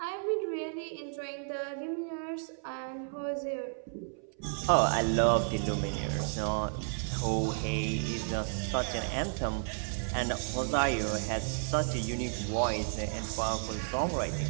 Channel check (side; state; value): left; silent; 56 dB below the other